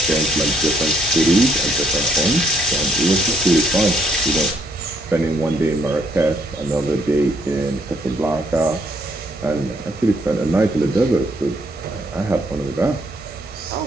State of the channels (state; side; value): normal; both; correlation 0.69